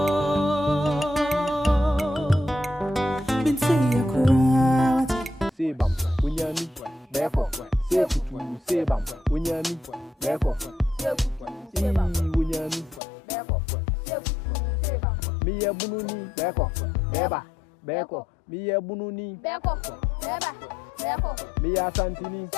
Mintiyo kura. Sebam, unyami, beko, sekutu, sebam, unyami, beko, unyami, miye bununi, beko, beba, beko, miye bununi, beko, beba, beko, miya santini,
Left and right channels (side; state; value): right; drops out; at 13.0 s